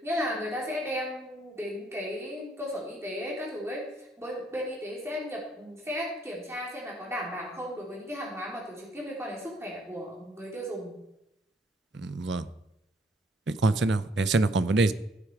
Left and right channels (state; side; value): normal; both; correlation 0.67